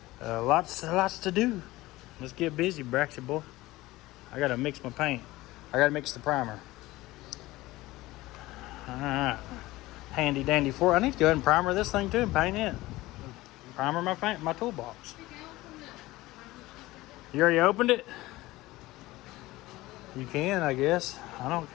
lots to do. Let's get busy, Braxy boy. I got to mix my paint. I got to mix the primer. All right. Handy dandy I need to go ahead and primer this thing too and paint it. Primer my toolbox. You already opened it? You can, I guess. I don't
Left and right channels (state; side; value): quieter; right; 18.6 dB